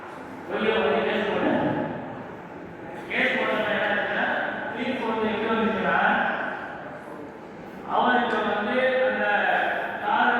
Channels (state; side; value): identical; both; correlation 1.00